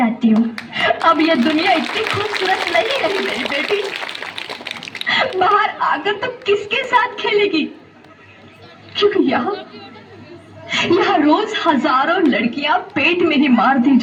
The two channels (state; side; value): identical; both; correlation 1.00